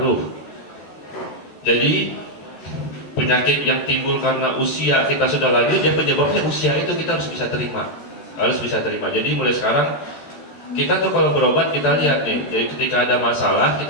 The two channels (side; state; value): right; late; 14 ms